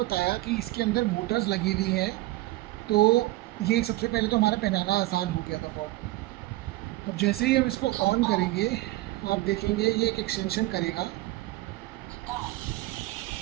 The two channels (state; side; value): quieter; left; 18.1 dB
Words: कि इसके अंदर मोटर्स लगी हुई हैं, तो ये सबसे पहले तो हमारा पहनाना आसान हो गया था बहुत। अब जैसे ही हम इसको ऑन करेंगे आप देखेंगे ये एक एक्सटेंशन करेगा